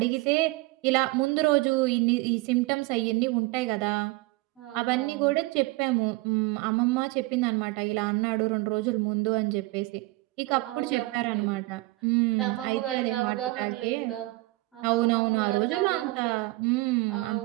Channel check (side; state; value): left; quieter; 21.5 dB